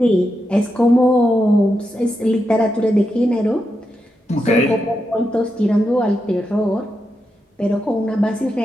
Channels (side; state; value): both; normal; correlation 0.86